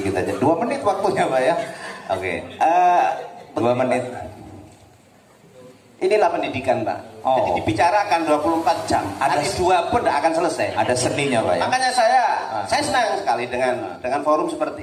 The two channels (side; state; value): both; identical; correlation 1.00